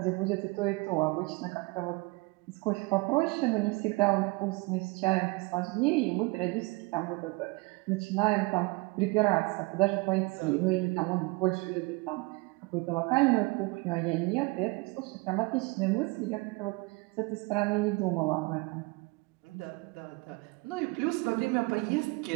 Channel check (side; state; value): left; quieter; 26.2 dB